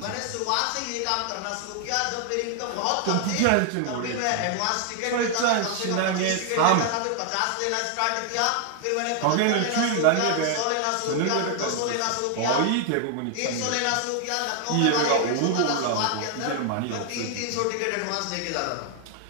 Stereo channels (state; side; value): different; both; correlation 0.00